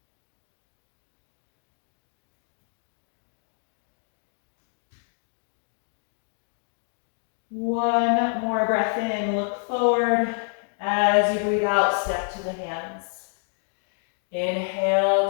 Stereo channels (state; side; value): silent; right; 60 dB below the other